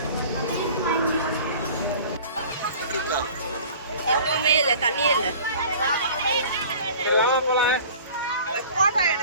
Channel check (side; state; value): both; inverted; correlation -0.45